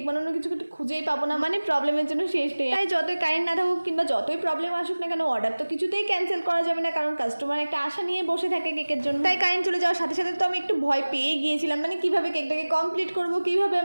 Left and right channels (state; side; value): inverted; both; correlation -1.00